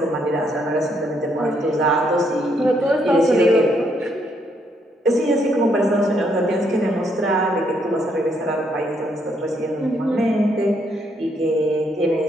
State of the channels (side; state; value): both; normal; correlation 0.73